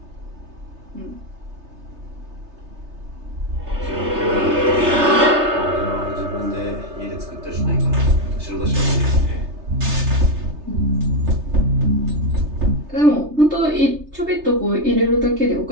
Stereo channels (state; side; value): late; left; 3.3 ms